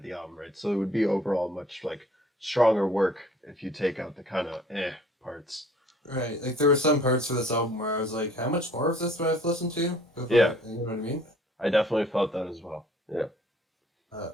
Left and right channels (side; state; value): both; normal; correlation 0.55